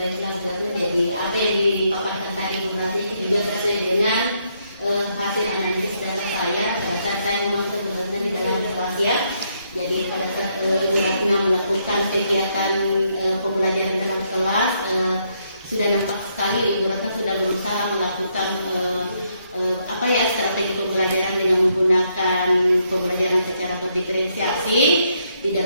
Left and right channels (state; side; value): inverted; both; correlation -0.75